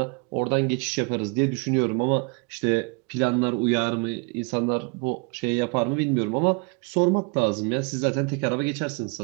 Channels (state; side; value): quieter; left; 33.6 dB